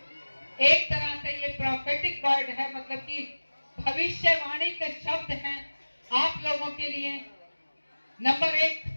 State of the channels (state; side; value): inverted; both; correlation -1.00